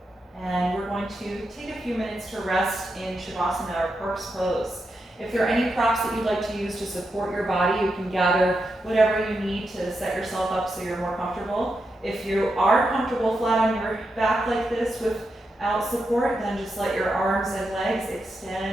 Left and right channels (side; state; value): both; normal; correlation 0.86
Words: And we're going to take a few minutes to rest in Shavasana or corpse pose. If there are any props that you'd like to use to support your body, you can gather whatever you need to set yourself up so you're more comfortable. If you are comfortable flat on your back like this without support, then just let your arms and legs